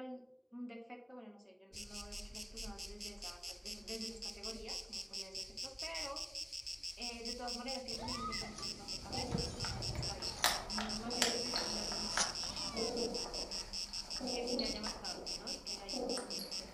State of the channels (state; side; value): identical; both; correlation 1.00